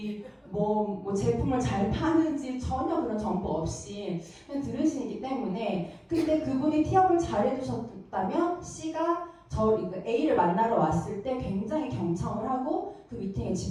뭐 제품을 잘 파는지 전혀 그런 정보 없이 그냥 들으시기 때문에, 근데 그분이 티업을 잘 해주셨다면 C가 A를 만나러 왔을 때 굉장히 경청을 하고 그 미팅에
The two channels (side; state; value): both; identical; correlation 1.00